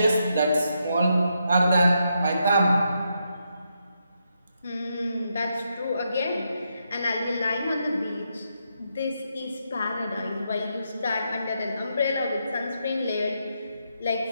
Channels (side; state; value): both; inverted; correlation -0.81